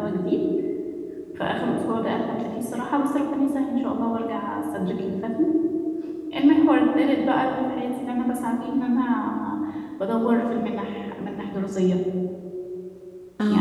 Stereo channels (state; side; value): identical; both; correlation 1.00